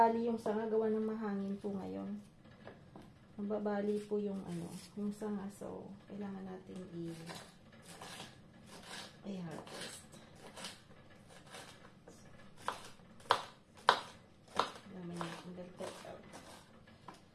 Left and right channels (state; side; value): identical; both; correlation 1.00